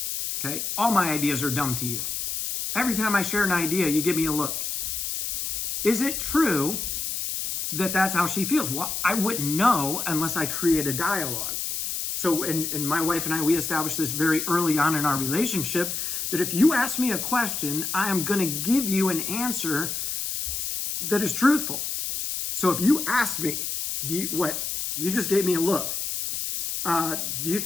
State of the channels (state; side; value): noise; left; hiss, 3 dB below the sound